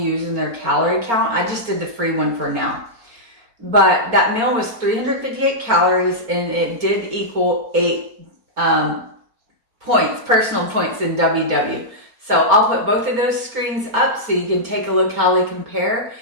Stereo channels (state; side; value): late; left; 4.4 ms